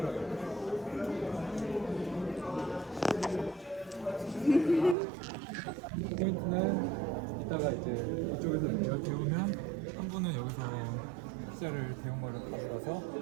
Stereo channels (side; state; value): left; drops out; at 5.0 s